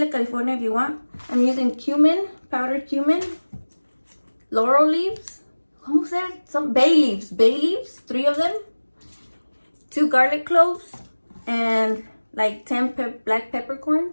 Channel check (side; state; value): both; inverted; correlation -1.00